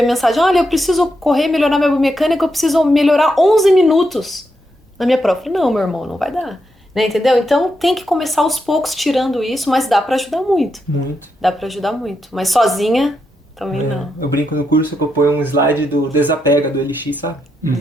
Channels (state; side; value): normal; both; correlation 0.83